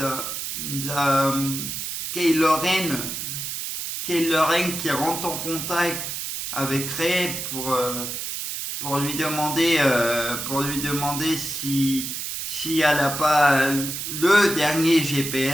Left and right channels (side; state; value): right; noise; hiss, 5 dB below the sound